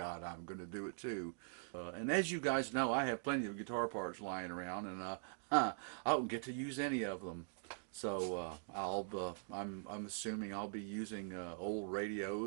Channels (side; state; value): left; silent; digital silence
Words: I'm going to do it too. And as you guys know, I have plenty of guitar parts lying around, and I don't get to use any of them. So I'm assuming I'll be using old